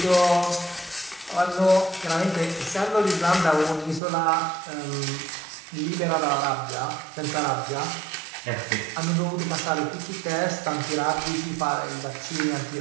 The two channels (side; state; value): left; drops out; at 4.0 s